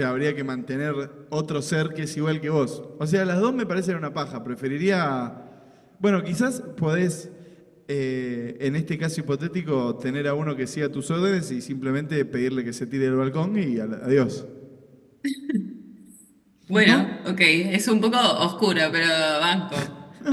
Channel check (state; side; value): identical; both; correlation 1.00